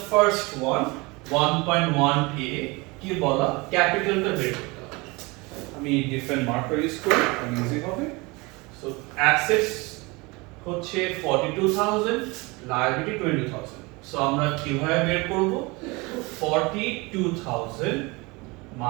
first one, 1.1a, কি বলা, ক্যাপিটালটা বের করতে হবে। আমি ডিফারেন্ট মার্কার ইউজ করি, আমি ইজি হবে। So assets হচ্ছে 42,000, লায়াবিলিটি 20,000। সো আমরা কিভাবে বের করব, 42,000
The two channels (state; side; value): quieter; left; 25.3 dB